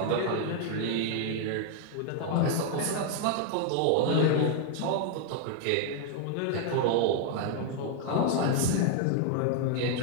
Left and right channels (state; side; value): different; both; correlation 0.00